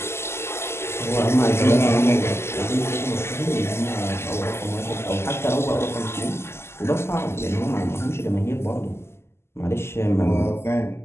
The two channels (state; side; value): late; right; 0.12 ms